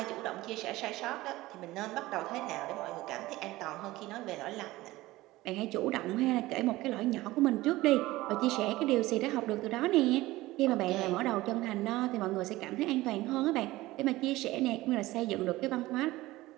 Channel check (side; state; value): left; quieter; 18.3 dB